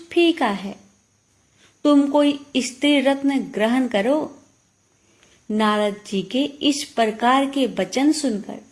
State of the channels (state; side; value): identical; both; correlation 1.00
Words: फीका है। तुम कोई स्त्री रत्न ग्रहण करो। नारद जी के इस प्रकार के वचन सुनकर